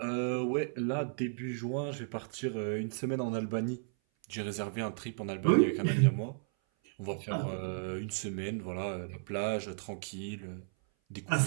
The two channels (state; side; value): silent; left; 55 dB below the other